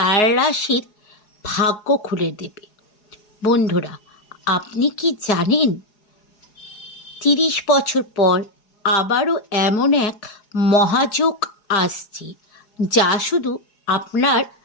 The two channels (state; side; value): late; right; 4.8 ms